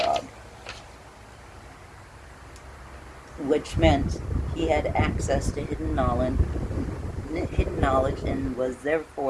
which meant he had access to hidden knowledge and was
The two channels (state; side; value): identical; both; correlation 1.00